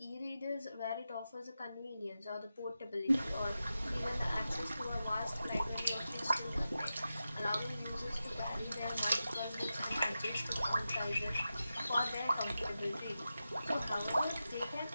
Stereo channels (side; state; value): both; inverted; correlation -0.91